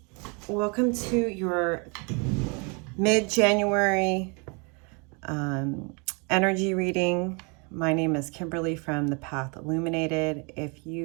welcome to your mid-January energy reading. My name is Kimberly from the Path Illuminated. If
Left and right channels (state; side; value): quieter; left; 32.9 dB